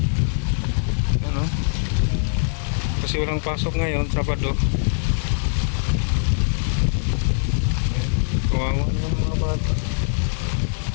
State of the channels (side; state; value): right; silent; digital silence